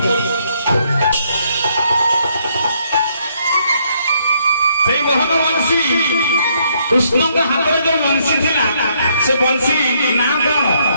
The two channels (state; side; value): inverted; both; correlation -0.71